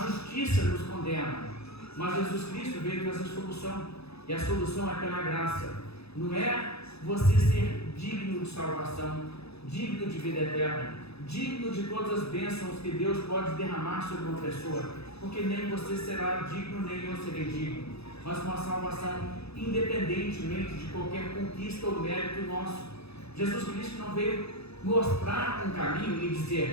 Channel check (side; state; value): right; late; 0.79 ms